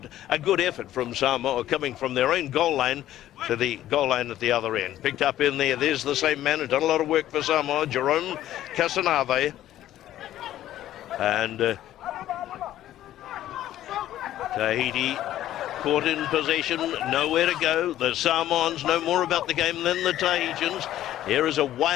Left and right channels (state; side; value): quieter; right; 13.0 dB